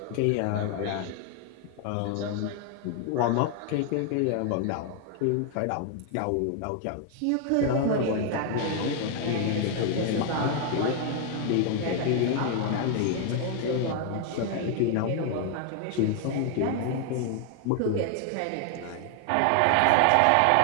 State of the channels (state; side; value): different; both; correlation 0.00